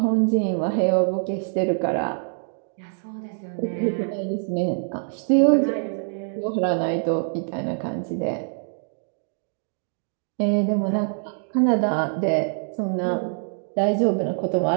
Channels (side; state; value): left; silent; digital silence